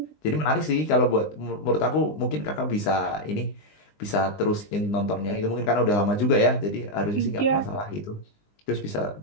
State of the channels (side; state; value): right; late; 20 ms